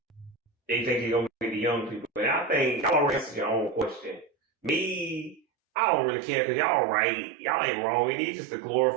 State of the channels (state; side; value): drops out; left; at 5.4 s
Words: they think it's gonna be the young people. And I think y'all already answered your own question. Me, I don't really care because y'all right. Y'all ain't wrong. It is just a